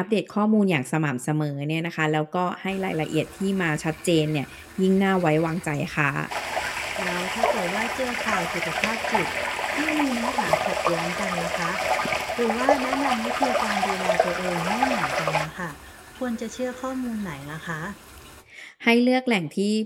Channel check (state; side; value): identical; both; correlation 1.00